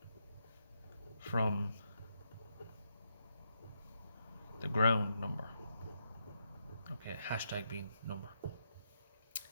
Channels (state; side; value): inverted; both; correlation -0.80